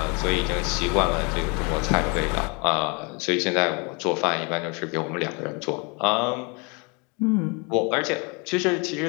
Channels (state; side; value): quieter; right; 31.6 dB